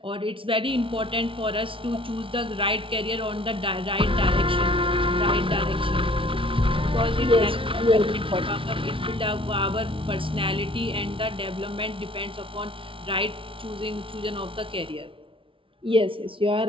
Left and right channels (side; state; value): left; late; 0.25 ms